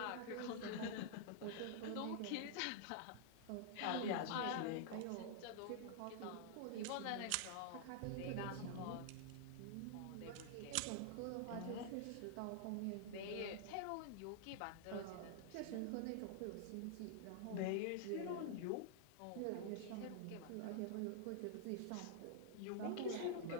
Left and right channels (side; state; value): both; different; correlation -0.01